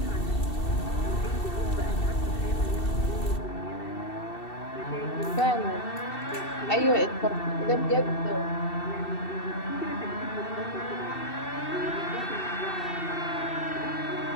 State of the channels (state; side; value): late; right; 2.7 ms